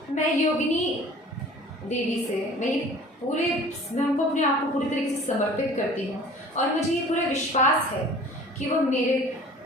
मैं योगिनी देवी से मैं उनको अपने आप को पूरी तरीके से समर्पित करती हूँ, और मुझे ये पूरा विश्वास है कि वो मेरे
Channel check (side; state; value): both; normal; correlation 0.46